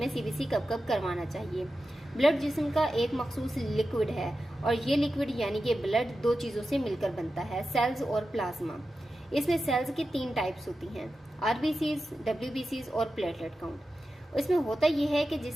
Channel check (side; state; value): both; normal; correlation 0.92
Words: CBC कब कब करवाना चाहिए। ब्लड जिस्म का एक मखसूस लिक्विड है और ये लिक्विड यानी कि ब्लड दो चीज़ों से मिलकर बनता है, सेल्स और प्लाज्मा। इसमें सेल्स की 3 टाइप्स होती हैं, RBCs, WBCs और प्लेटलेट काउंट। इसमें होता यह है कि